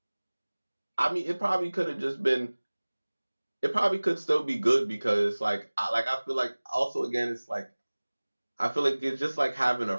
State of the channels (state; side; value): inverted; both; correlation -1.00